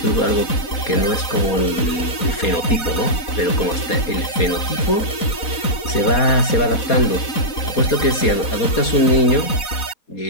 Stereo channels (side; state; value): right; late; 4.0 ms